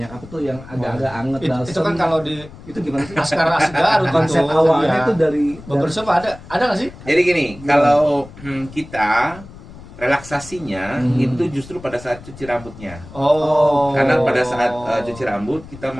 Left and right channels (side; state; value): left; noise; rumble, 17 dB below the sound